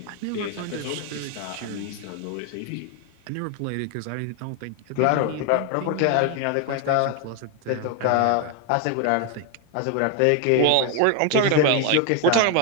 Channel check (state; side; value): different; both; correlation 0.01